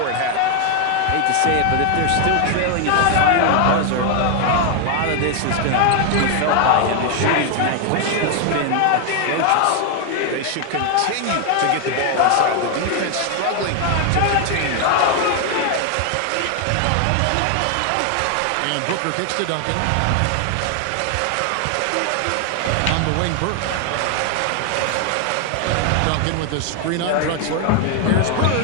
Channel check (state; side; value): different; both; correlation 0.01